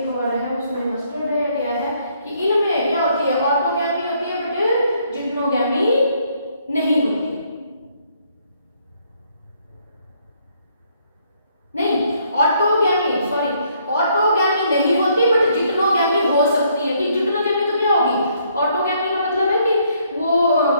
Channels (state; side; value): inverted; both; correlation -0.69